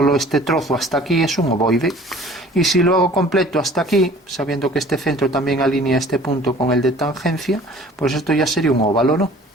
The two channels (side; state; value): both; normal; correlation 0.49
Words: este trozo hasta aquí, es un ovoide. Y si lo hago completo hasta aquí, sabiendo que este centro también alinea este punto con el de tangencia, pues esto ya sería un óvalo, ¿no?